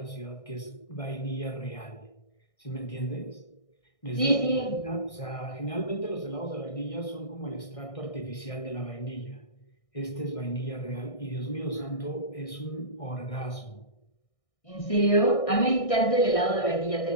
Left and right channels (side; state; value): right; late; 1.6 ms